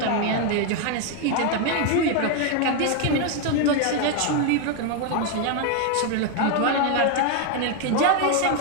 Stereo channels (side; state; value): both; different; correlation 0.01